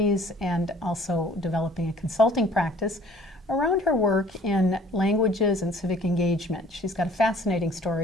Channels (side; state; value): both; normal; correlation 0.54